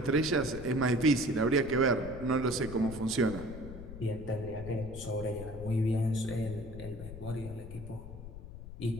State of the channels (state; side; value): noise; left; rumble, 12 dB below the sound